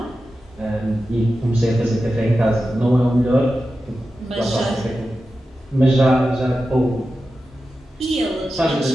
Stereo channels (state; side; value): normal; both; correlation 0.92